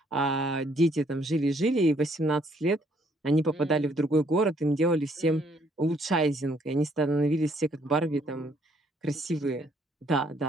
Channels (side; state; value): both; normal; correlation 0.67